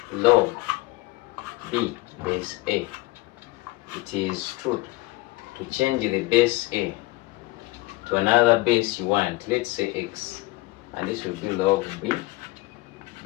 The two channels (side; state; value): right; quieter; 20.9 dB